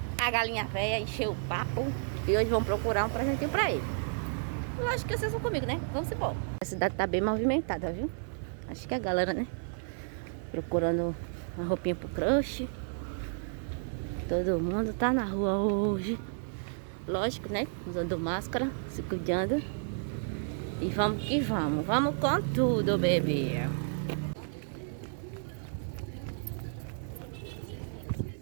A galinha velha encheu o papo. E hoje vamos procurar um presentinho pra ele. Lógico que vocês vão comigo, né? Vamos embora. A cidade tá bem movimentada, viu? Acho que a galera, né? Procurando uma roupinha pro crush. Todo mundo tá na rua hoje. Lógico, né? Usando máscara, se cuidando. E vamos que vamos. Vamos com tudo, bebê.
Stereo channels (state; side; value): silent; left; 56 dB below the other